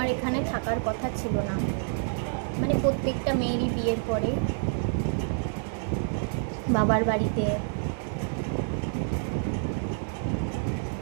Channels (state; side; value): silent; left; digital silence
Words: এখানে থাকার কথা ছিল না, মানে প্রত্যেকটা মেয়েরই বিয়ের পরে বাবার বাড়িতে